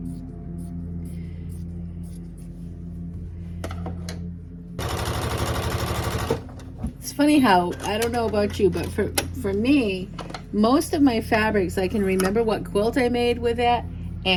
It's funny how, I don't know about you, but for me, most of my fabrics, I can remember what quilt I made with it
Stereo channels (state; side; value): identical; both; correlation 1.00